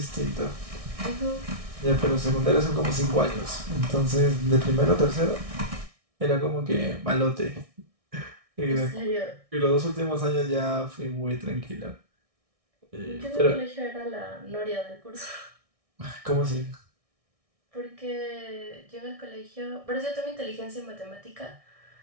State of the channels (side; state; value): left; late; 1.6 ms